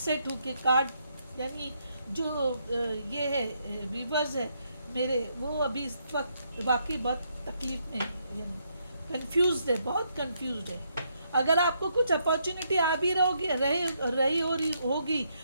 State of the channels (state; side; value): inverted; both; correlation -0.76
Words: हूँ कि कार्ड, यानी जो ये है व्यूअर्स है मेरे, वो अभी इस वक्त वाकई बहुत तकलीफ में है, यानी कंफ्यूज्ड है, बहुत कंफ्यूज्ड है। अगर आपको कुछ अपॉर्चुनिटी आ भी रही होगी